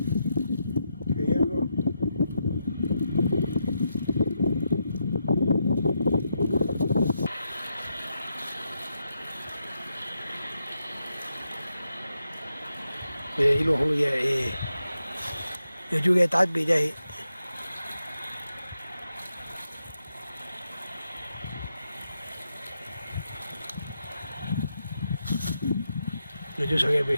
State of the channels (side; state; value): both; inverted; correlation -0.84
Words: 一路红也，也就给打比赛。那就说给背，